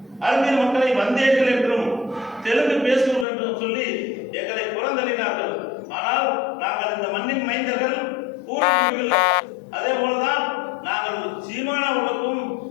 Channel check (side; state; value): right; drops out; at 3.2 s